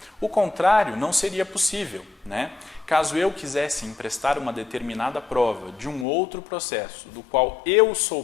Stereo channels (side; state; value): right; drops out; at 6.1 s